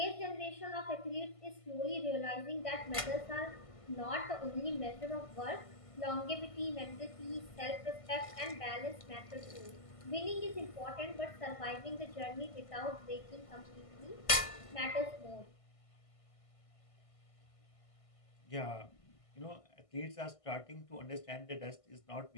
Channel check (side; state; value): right; late; 1.5 ms